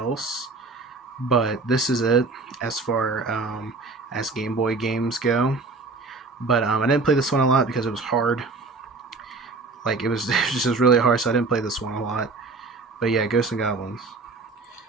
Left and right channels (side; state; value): left; quieter; 3.8 dB